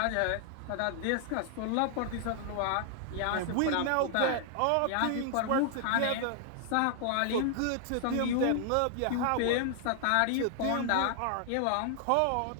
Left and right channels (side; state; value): both; different; correlation 0.00